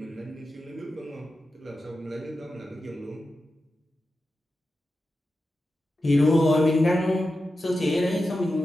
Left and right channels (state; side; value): normal; both; correlation 0.91